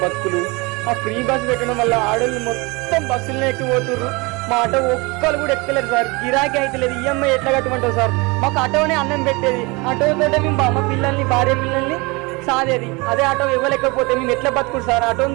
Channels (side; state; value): left; quieter; 26.3 dB